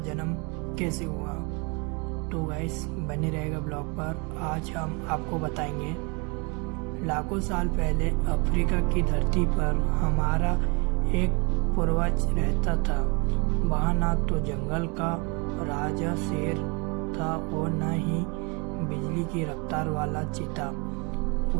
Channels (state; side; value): quieter; left; 31.5 dB